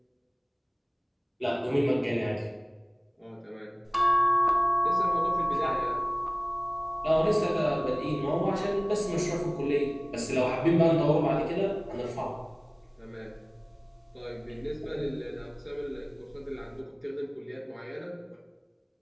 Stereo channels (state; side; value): identical; both; correlation 1.00